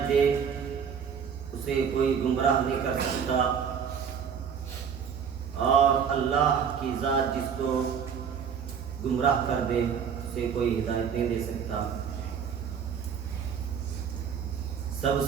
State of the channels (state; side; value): quieter; left; 7.2 dB